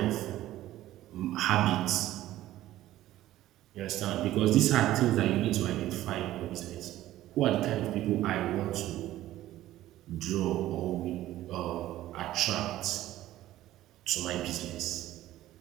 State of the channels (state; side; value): quieter; left; 14.5 dB